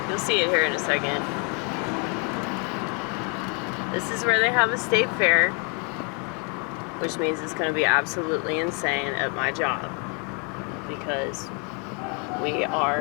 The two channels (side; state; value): right; quieter; 32.4 dB